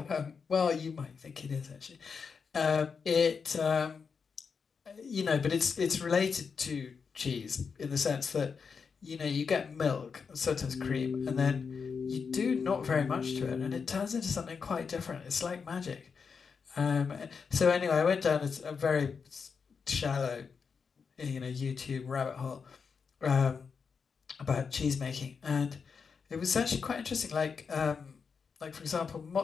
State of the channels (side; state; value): right; quieter; 5.7 dB